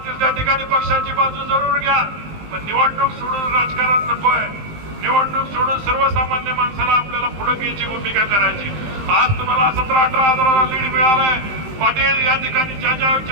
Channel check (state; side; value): late; left; 19 ms